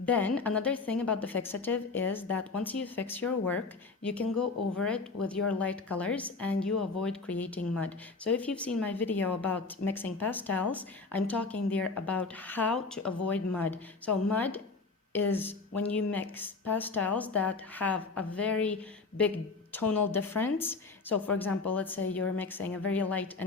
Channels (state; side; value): quieter; right; 4.1 dB